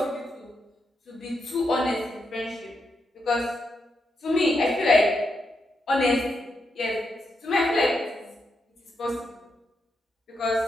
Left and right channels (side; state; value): both; normal; correlation 0.83